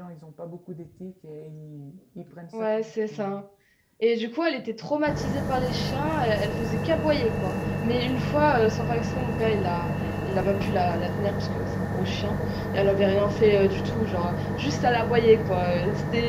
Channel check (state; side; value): identical; both; correlation 1.00